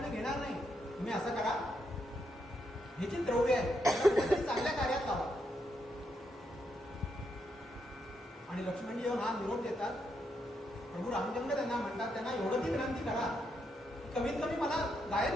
घेणार नाही. तुम्ही असं करा, हे जे द्रव्य आहे त्याला कुठेतरी चांगल्या कार्यात लावा. आणि लक्ष्मणजी येऊन हा निरोप देतात. प्रभू रामचंद्र त्यांना म्हणतात, त्यांना एवढं ती विनंती करा, कमीत कमी मला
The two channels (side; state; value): both; normal; correlation 0.80